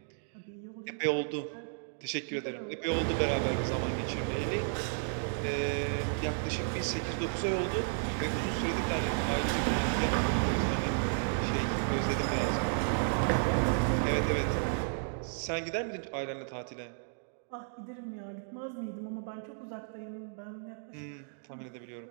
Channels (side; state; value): left; silent; digital silence